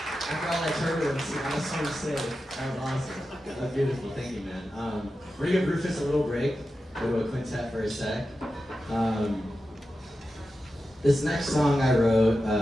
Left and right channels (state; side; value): normal; both; correlation 0.91